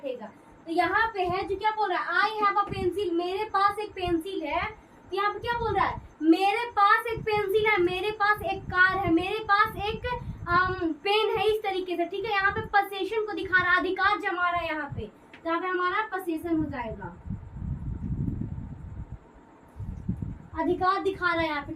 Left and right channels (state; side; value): identical; both; correlation 1.00